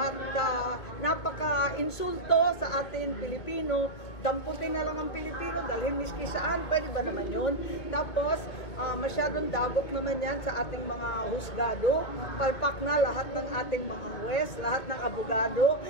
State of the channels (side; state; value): right; late; 2.4 ms